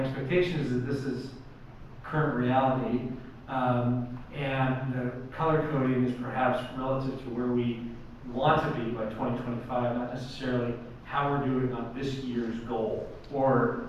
expectation is that this is current reality, and the color coding is perhaps relative to where we want to be by 2025, not necessarily how we're doing on this year's goal, or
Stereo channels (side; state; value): both; identical; correlation 1.00